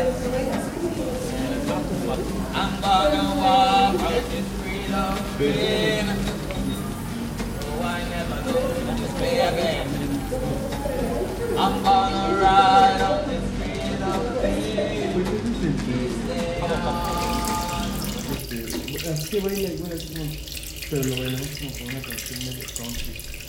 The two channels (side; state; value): both; identical; correlation 1.00